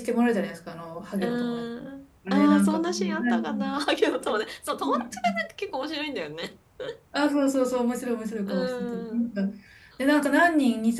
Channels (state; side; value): identical; both; correlation 1.00